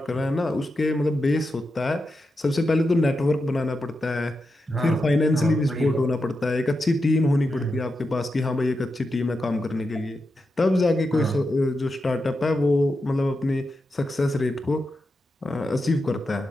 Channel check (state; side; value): normal; both; correlation 0.88